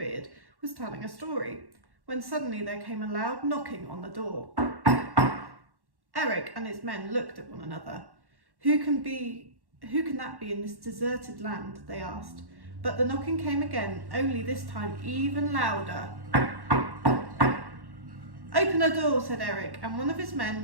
was telling a story, when suddenly there came a loud knocking on the door. Erik and his men looked at one another. Who can that be in this deserted land? They asked. But the knocking came again, only this time even louder. "Open the door," said Erik, and one of his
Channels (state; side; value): late; left; 1.1 ms